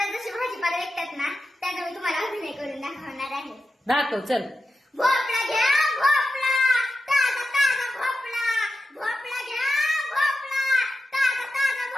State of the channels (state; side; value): normal; both; correlation 0.91